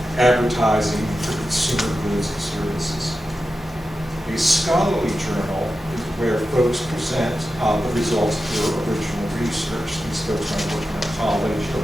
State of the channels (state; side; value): normal; both; correlation 0.91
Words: advertising for consumer goods and services. A scholarly journal is where folks present the results of their original research. These folks might work in a college or